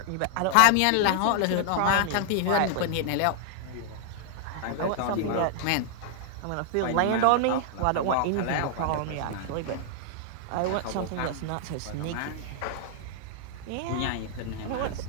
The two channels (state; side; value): different; both; correlation -0.01